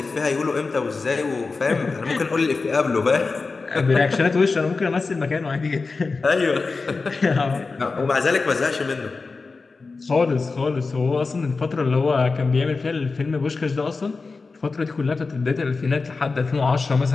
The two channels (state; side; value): quieter; right; 4.1 dB